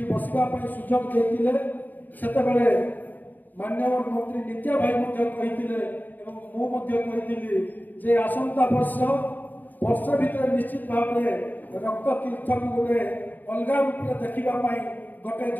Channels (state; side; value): late; right; 0.087 ms